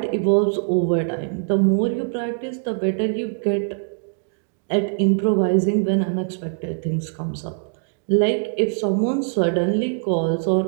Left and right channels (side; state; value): left; silent; digital silence